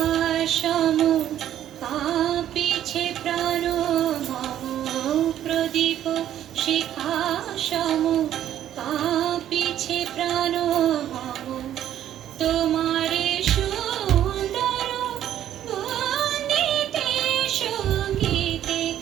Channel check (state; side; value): quieter; left; 11.3 dB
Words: সম কাঁপিছে প্রাণ মম প্রদীপ শিখা সম কাঁপিছে প্রাণ মম তোমারে সুন্দর বন্দিতে সঙ্গীতে